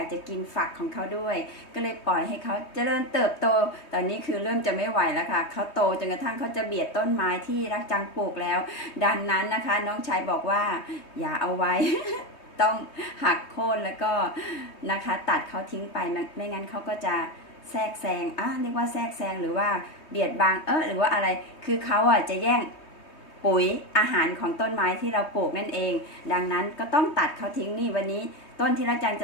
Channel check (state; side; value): late; right; 3.2 ms